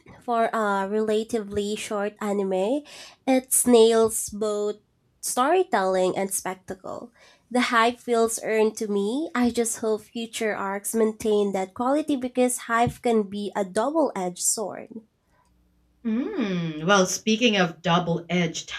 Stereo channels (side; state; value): both; identical; correlation 1.00